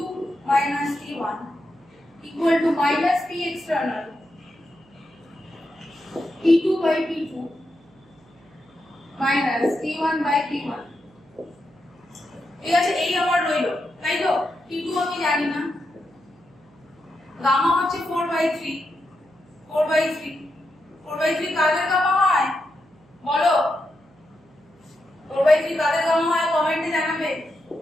minus T1 equal to minus P external T2 by T2 minus T1 by T1। ঠিক আছে। এই আমার রইল, তাই তো। T2 আমি জানি না, গামা হচ্ছে 4/3 কাদের গামা হয় বলো, 4/3 কাদের গামা হয় কমেন্টে জানাবে।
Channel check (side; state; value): right; noise; hum, 29 dB below the sound